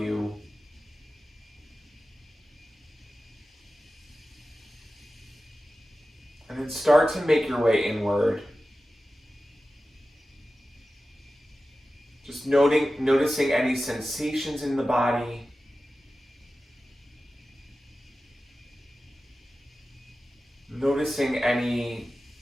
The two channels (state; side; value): normal; both; correlation 0.95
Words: And then start to make your way inward. Just noticing any sensations in the body. Noticing any